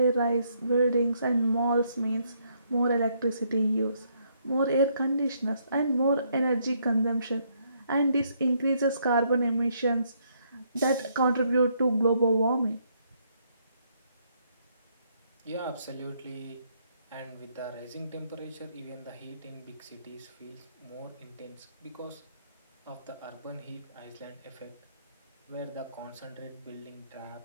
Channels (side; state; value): both; inverted; correlation -0.72